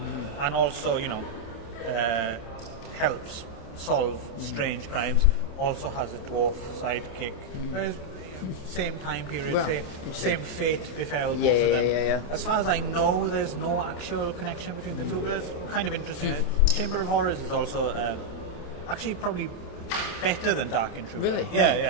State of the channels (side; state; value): right; late; 28 ms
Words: and also, helps solve strange crimes. Also has a dwarf sidekick. Same time period, same fate befell both of them. Yeah. As far as I know, there's no actual connection between the two, but it's kind of interesting. Chamber of Horrors is also actually probably better than Dark Intruder. Really?